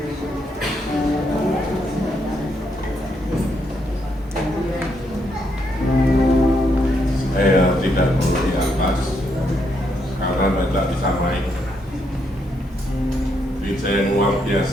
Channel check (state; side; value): normal; both; correlation 0.77